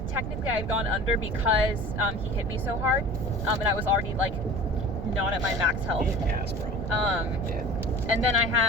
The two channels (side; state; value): right; noise; rumble, 5 dB below the sound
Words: Technically, I had gone under because he hit me so hard, and I was already like not at my max health. Yes, bro. And then I